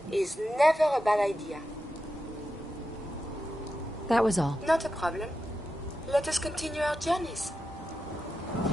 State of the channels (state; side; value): normal; both; correlation 0.89